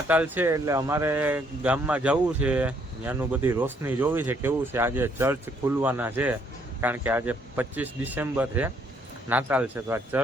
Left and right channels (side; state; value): both; normal; correlation 0.68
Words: છે એટલે અમારે ગામમાં જવું છે, ત્યાંનું બધી રોશની જોવી છે કેવું છે. આજે ચર્ચ ખુલવાના છે કારણ કે આજે 25 ડિસેમ્બર છે, નાતાલ છે. તો આ